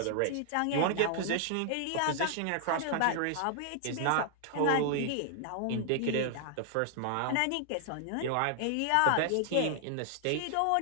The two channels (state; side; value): different; both; correlation 0.00